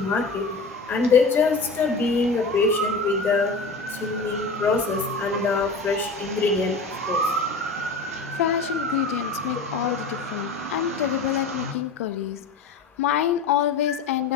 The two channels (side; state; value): right; quieter; 3.9 dB